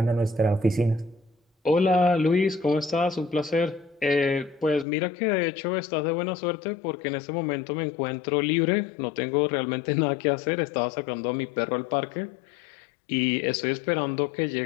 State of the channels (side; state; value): right; drops out; at 4.9 s